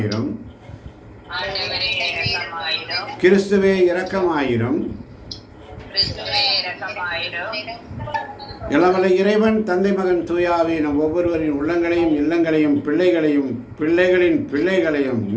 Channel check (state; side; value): identical; both; correlation 1.00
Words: கிறிஸ்துவே இரக்கமாயிரும். இளவலை இறைவன் தந்தை மகன் தூயாவி நம் ஒவ்வொருவரின் உள்ளங்களையும் இல்லங்களையும் பிள்ளைகளையும் பிள்ளைகளின் பிள்ளைகளையும்